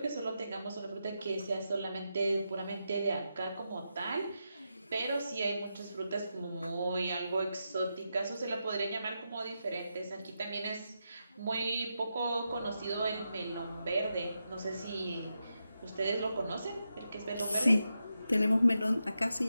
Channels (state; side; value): inverted; both; correlation -0.86